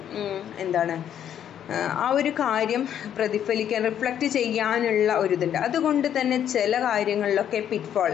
എന്താണ്, ആ ഒരു കാര്യം പ്രതിഫലിക്കാൻ റിഫ്ലക്റ്റ് ചെയ്യാനുള്ള ഒരിതുണ്ട്. അതുകൊണ്ട് തന്നെ ചില കാര്യങ്ങളിലൊക്കെ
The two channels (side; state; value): right; quieter; 9.8 dB